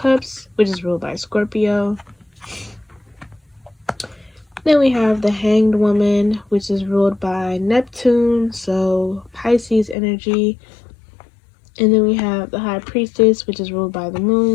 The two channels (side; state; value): right; drops out; at 10.0 s